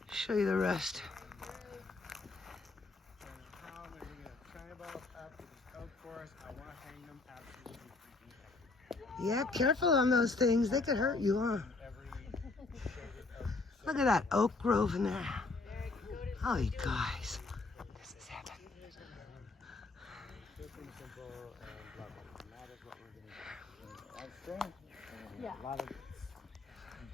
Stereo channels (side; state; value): right; quieter; 3.6 dB